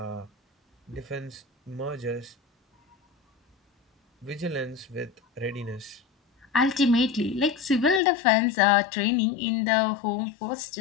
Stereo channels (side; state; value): right; drops out; at 8.0 s